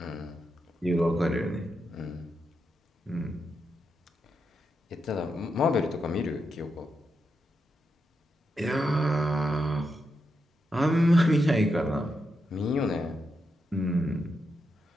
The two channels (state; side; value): normal; both; correlation 0.85